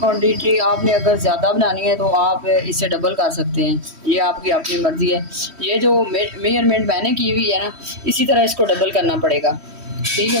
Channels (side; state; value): left; late; 3.1 ms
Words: आपने अगर ज़्यादा बनानी है तो आप इसे डबल कर सकते हैं, ये आपकी अपनी मर्ज़ी है। ये जो मेजरमेंट मैंने की हुई है ना, इसी तरह इसको डबल करना पड़ेगा, ठीक